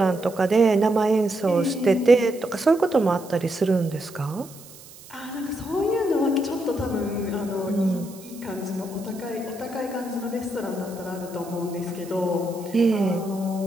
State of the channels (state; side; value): noise; right; hiss, 20 dB below the sound